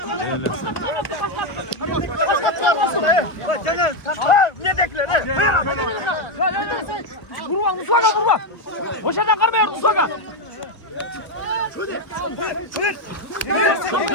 Ne dekler? Vurma Musaka vurma. Boşadan karmıyor Musaka.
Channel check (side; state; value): right; late; 1.1 ms